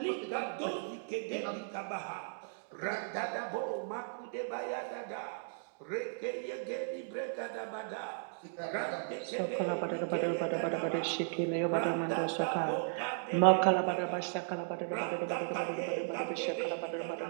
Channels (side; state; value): left; silent; digital silence